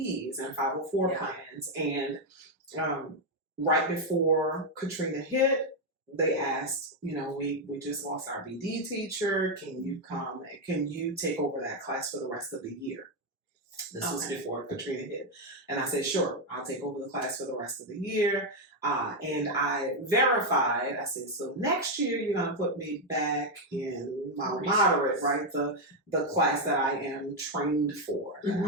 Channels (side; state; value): both; normal; correlation 0.03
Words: and 504 plans. And right before Katrina hit, they asked, we just lost our BD teacher. Can you come? Can you take over that class for the rest of the year? This was before Katrina hit. And I said, sure, I'll take over the class for the rest of the year. And I verified, I said, so next year you're going to put me back in my moderate, right? The class that I am trained for.